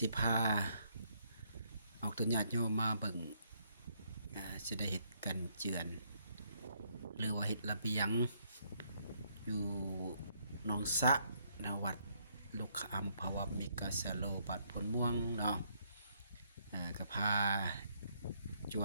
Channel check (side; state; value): both; inverted; correlation -0.71